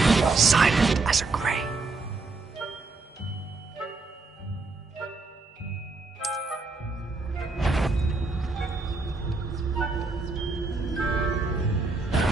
Silent as a grave.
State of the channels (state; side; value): quieter; left; 3.8 dB